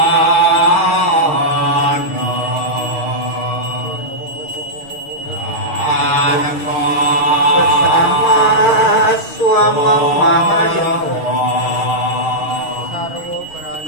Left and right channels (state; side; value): late; right; 6.5 ms